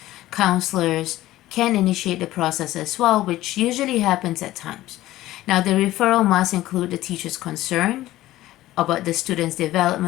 counselors, can initiate the process as well, which usually happens at times. Now, the referral must include the teacher's concern about the student's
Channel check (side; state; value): right; quieter; 15.6 dB